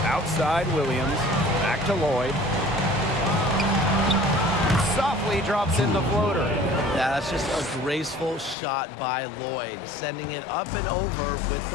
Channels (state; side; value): drops out; right; at 8.6 s